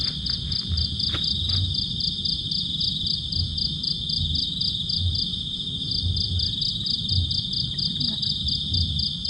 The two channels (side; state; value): both; normal; correlation 0.90